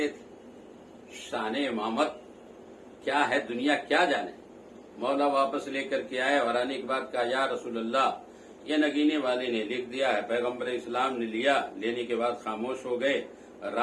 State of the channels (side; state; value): both; identical; correlation 1.00